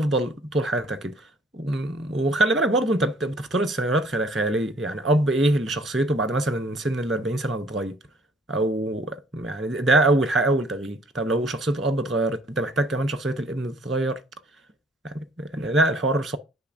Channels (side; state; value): both; normal; correlation 0.58